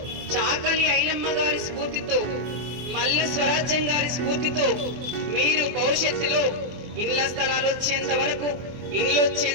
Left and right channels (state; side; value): late; left; 24 ms